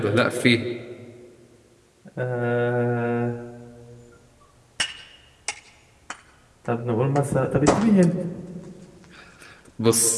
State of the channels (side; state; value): both; identical; correlation 1.00